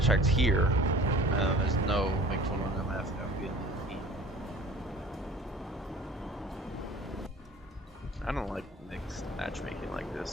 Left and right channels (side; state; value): both; normal; correlation 0.46